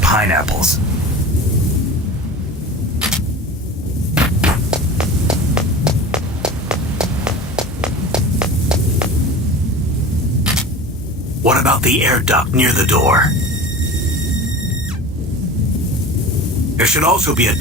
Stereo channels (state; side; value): normal; both; correlation 0.34